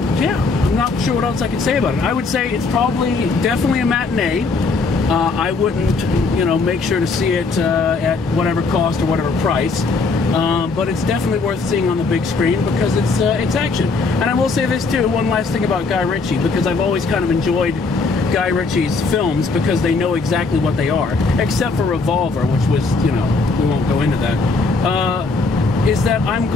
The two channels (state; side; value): quieter; right; 4.0 dB